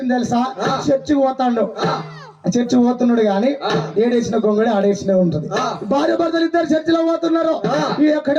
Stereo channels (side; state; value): both; identical; correlation 1.00